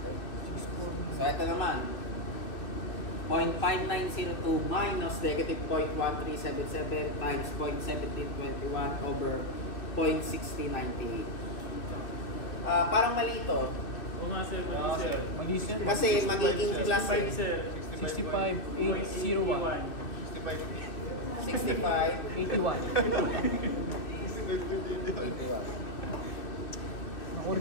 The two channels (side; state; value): right; late; 2.6 ms